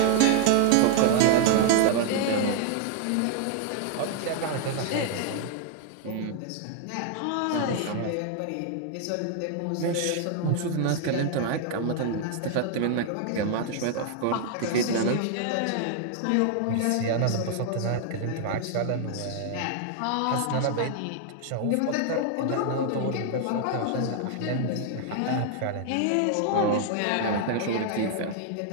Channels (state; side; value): different; both; correlation 0.00